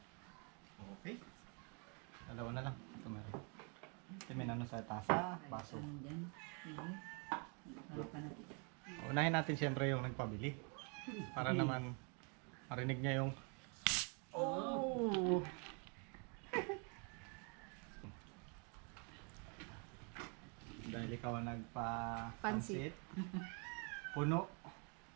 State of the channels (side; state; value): left; quieter; 36.2 dB